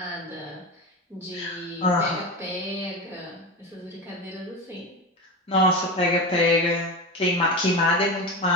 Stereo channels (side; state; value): both; normal; correlation 0.23